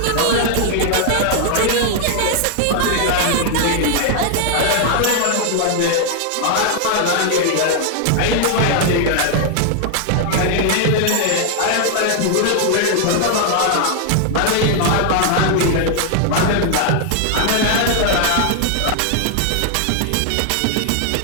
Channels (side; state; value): both; different; correlation 0.00